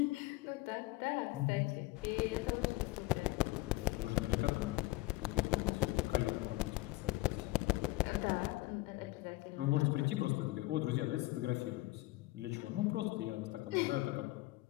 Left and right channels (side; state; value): right; quieter; 20.1 dB